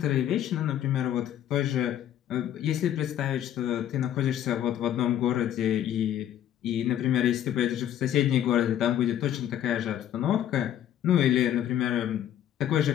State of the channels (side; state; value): right; quieter; 11.0 dB